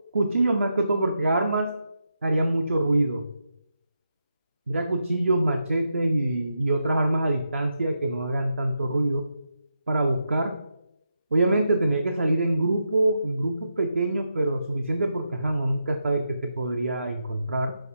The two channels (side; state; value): both; inverted; correlation -0.85